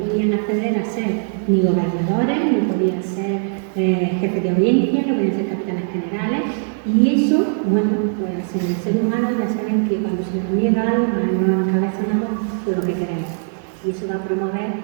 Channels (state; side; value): silent; left; 66 dB below the other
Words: acceder a ser ni gobernadores, no podían ser jefes de audiencia, no podían ser capitanes generales. Y eso, bueno, pues en el ser humano ya saben que cuando se nos niega algo, nos encabezonamos por lo que queremos. Y eso va a promover